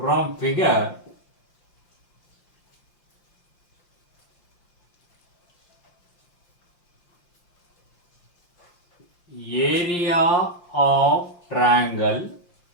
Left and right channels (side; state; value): right; late; 5.7 ms